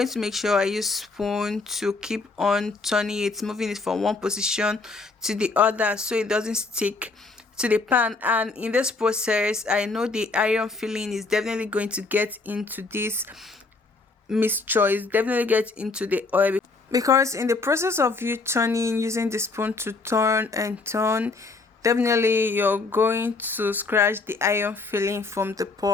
to make sure I use spoon to keep on turning it, moving it from one position to the other so it doesn't stick to the pan. And in this process, I know the iron filling is definitely going to get into this mixture, is definitely get into the oil, because in the process of you turning, using the spoon to turn and turn, definitely you're going to scratch the iron filling from the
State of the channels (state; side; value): quieter; right; 3.8 dB